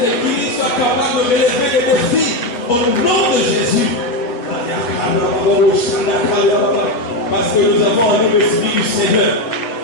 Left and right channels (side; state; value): right; late; 8.2 ms